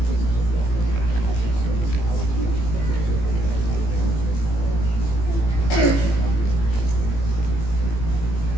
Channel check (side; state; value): right; late; 18 ms